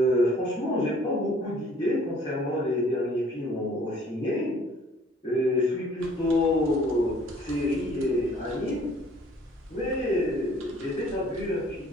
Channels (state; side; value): normal; both; correlation 0.56